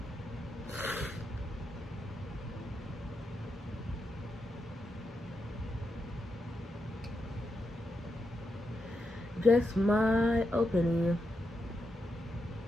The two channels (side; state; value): both; normal; correlation 0.85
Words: Just my opinion.